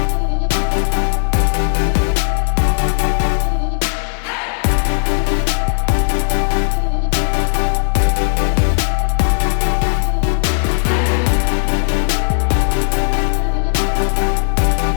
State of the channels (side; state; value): right; silent; digital silence